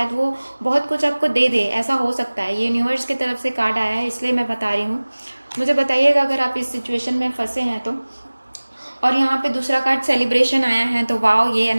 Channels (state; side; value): inverted; both; correlation -1.00